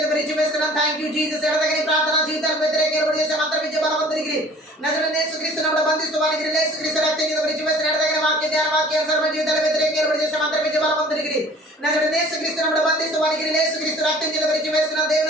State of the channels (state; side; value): normal; both; correlation 0.49